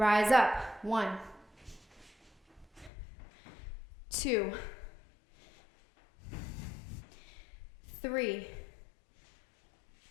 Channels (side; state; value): right; drops out; at 2.9 s